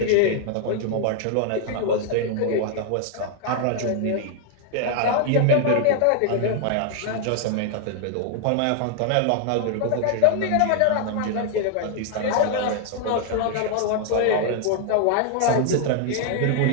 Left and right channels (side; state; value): both; different; correlation 0.00